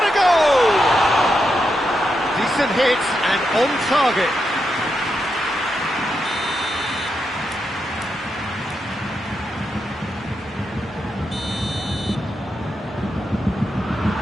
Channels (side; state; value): both; normal; correlation 0.85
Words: a goal! Decent hit and on target.